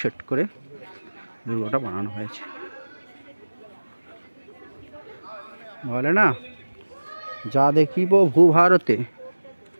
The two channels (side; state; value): both; inverted; correlation -1.00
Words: সেট করে দুর্গটা বানানো হয়েছে। বলে না, যা দেখিব ভূভারতে